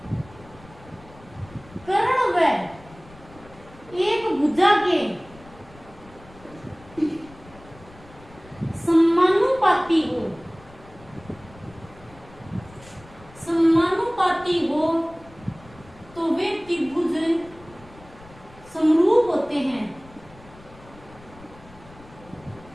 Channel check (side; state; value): left; noise; rumble, 22 dB below the sound